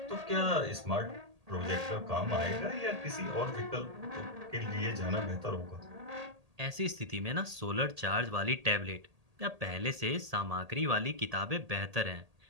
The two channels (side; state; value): left; late; 1.8 ms